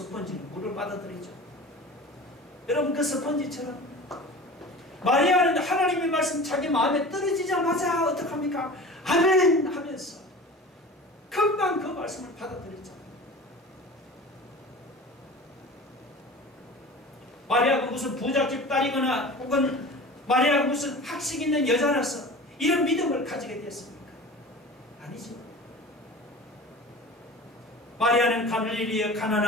물을 빨아들이죠. 여러분 그 스펀지처럼 마리아는 하나님의 말씀 자기 마음에 떨어지자마자 어떡합니까? 아멘 하면서 금방 그 말씀을 받아들였잖아요. 마리아가 무슨 부잣집 딸이거나 혹은 마리아가 무슨 학식 있는 여자라서 이런 믿음을 가지게 됐습니까? 아니죠. 마리아는 갈릴리에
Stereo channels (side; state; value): both; normal; correlation 0.37